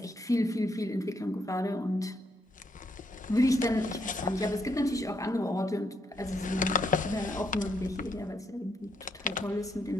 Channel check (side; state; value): both; normal; correlation 0.76